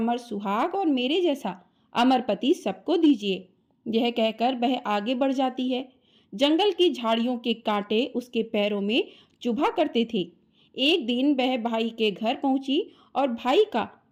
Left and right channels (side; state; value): both; identical; correlation 1.00